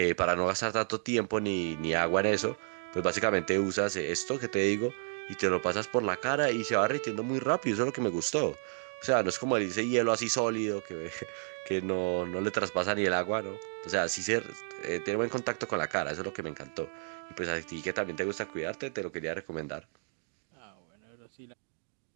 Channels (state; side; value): silent; left; 57 dB below the other